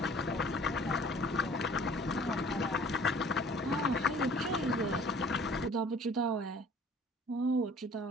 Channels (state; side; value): normal; both; correlation 0.51